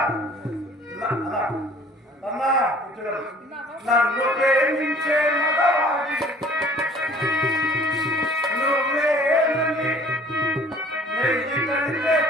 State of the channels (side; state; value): both; normal; correlation 0.52